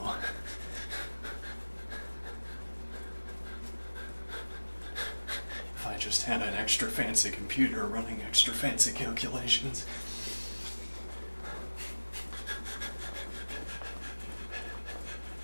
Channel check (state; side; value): inverted; both; correlation -1.00